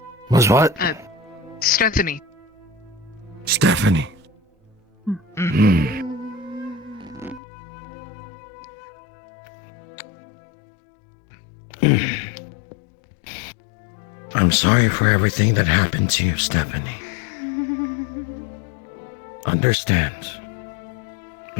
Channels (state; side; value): drops out; right; at 7.4 s